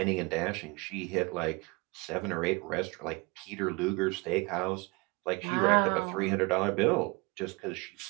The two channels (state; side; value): quieter; left; 26.6 dB